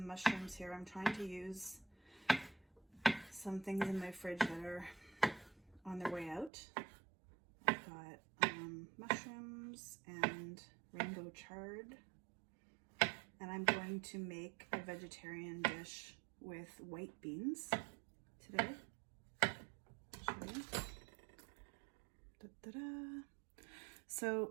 mushrooms here. I'm trying to use some things in my fridge that are on their way out. I've got mushrooms and rainbow chard, and I'm going to make a vegetarian dish with white beans today. I'll show you. Da-da-da.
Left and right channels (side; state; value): left; drops out; at 6.5 s